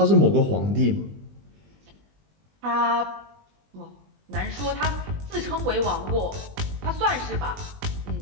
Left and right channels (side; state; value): left; late; 20 ms